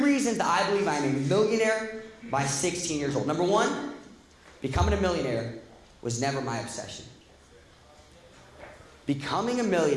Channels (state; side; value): identical; both; correlation 1.00